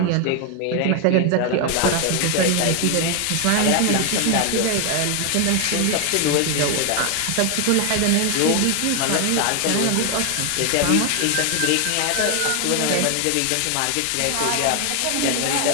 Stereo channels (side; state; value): both; different; correlation 0.01